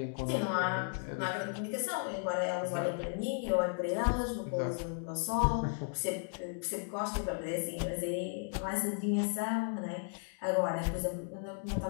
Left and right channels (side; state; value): right; silent; 54 dB below the other